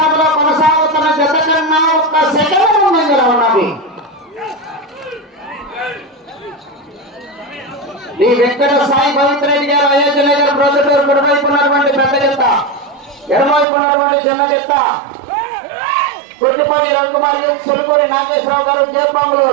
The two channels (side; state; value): left; drops out; at 13.7 s